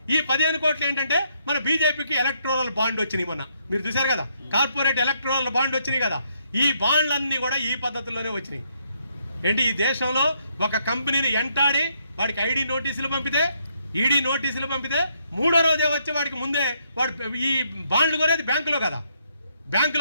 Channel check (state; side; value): inverted; both; correlation -0.73